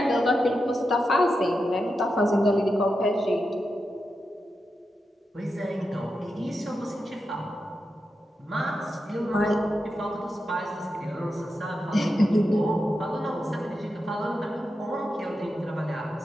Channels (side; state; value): both; normal; correlation 0.88